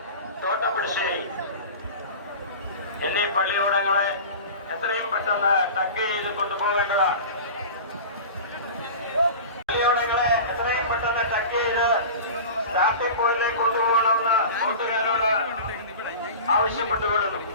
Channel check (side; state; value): both; inverted; correlation -0.34